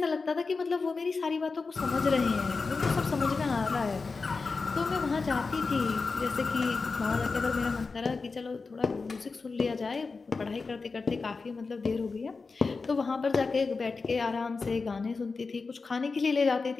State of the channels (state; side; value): quieter; right; 4.3 dB